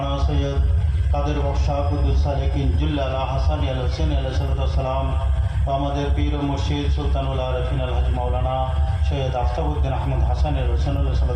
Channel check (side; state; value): both; identical; correlation 1.00